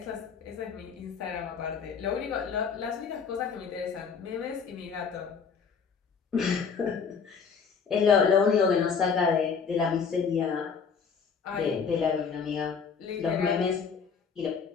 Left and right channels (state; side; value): quieter; right; 6.0 dB